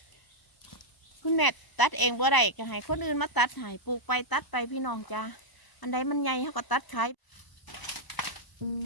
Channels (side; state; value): right; late; 1.0 ms